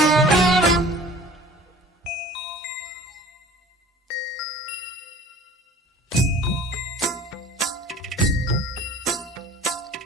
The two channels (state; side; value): normal; both; correlation 0.46